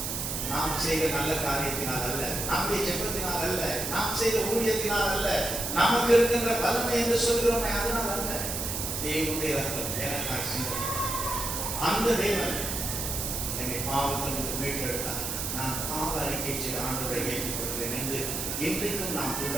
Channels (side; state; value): right; noise; hiss, 3 dB below the sound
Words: நாம் செய்த நல்ல காரியத்தினால் அல்ல, நம்முடைய ஜெபத்தினால் அல்ல, நாம் செய்த ஊழியத்தினால் அல்ல, நமக்கு இருக்கின்ற பலனை என்று சொல்கிறோமே அதனால் அல்ல. தேவனுடைய ரத்தம் எனக்காக சிந்தப்பட்டது. அந்த தேவன் என்னை பாவத்திலிருந்து மீட்டெடுத்தார். நான் பாவ அறிக்கை செய்த ஆண்டவரை ஏற்றுக் கொள்கிறேன் என்று இன்றைக்கும் நாம்